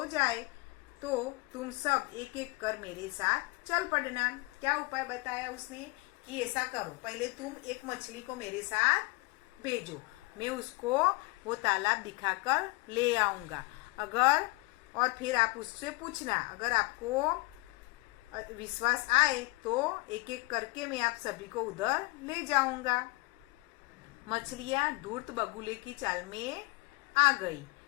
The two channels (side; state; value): right; quieter; 25.4 dB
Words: जाए तो तुम सब एक एक कर मेरे साथ चल पड़ना। क्या उपाय बताया उसने कि ऐसा करो, पहले तुम एक मछली को मेरे साथ भेजो, मैं उसको वो तालाब दिखाकर ले आऊंगा। और फिर आप उससे पूछना, अगर आपको विश्वास आए तो एक एक करके मैं आप सभी को उधर ले जाऊंगा। मछलियां धूर्त बगुले की चाल में आ गई।